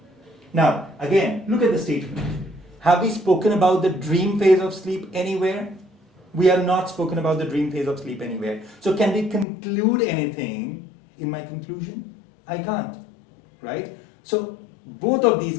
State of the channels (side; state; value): right; drops out; at 9.5 s